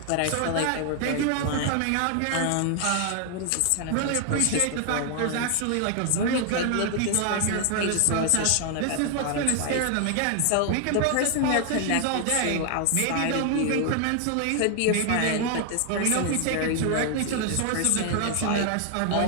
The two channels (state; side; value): different; both; correlation 0.00